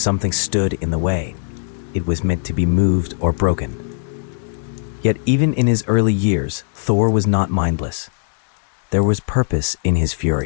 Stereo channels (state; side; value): silent; right; digital silence